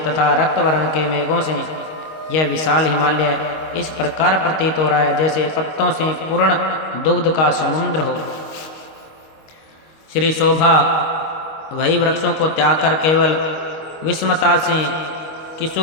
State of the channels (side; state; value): right; late; 25 ms